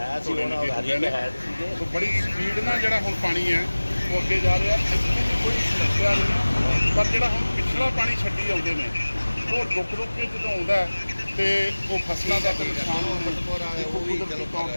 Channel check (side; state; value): both; inverted; correlation -1.00